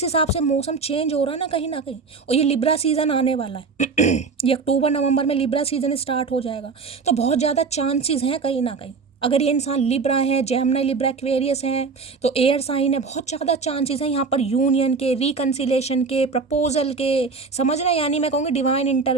हिसाब से मौसम चेंज हो रहा है ना कहीं और ये लिब्रा सीज़न आने वाला है ये अक्टूबर नवंबर में लिब्रा सीज़न स्टार्ट हो जाएगा, तो बहुत ज़्यादा चांसेस हैं कहीं ना कहीं, अगर ये इंसान लिब्रा है, जेमिनी लिब्रा एक्वेरियस हैं, तो एयर साइन है, बहुत ज़्यादा चांसेस हैं यहाँ पर यूनियन के, रिकन्सिलेशन के, प्रपोजल के, समझ रहे हैं, यानी मैं कहूँगी डिवाइन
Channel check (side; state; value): left; quieter; 4.7 dB